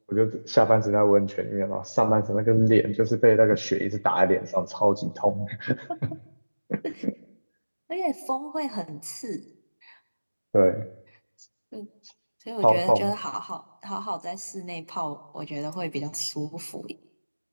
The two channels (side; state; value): both; inverted; correlation -1.00